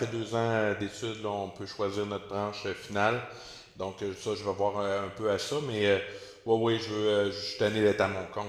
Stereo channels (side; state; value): both; identical; correlation 1.00